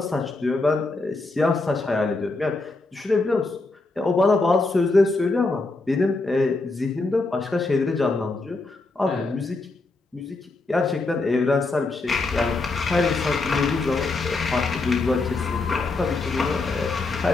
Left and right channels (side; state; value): right; quieter; 3.4 dB